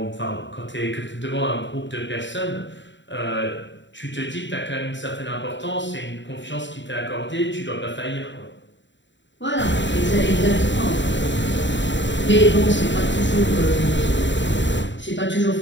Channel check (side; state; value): right; late; 0.53 ms